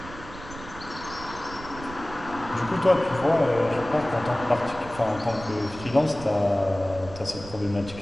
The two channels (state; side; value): noise; right; rumble, 15 dB below the sound